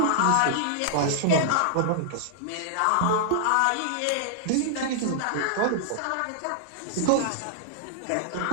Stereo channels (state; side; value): different; both; correlation -0.01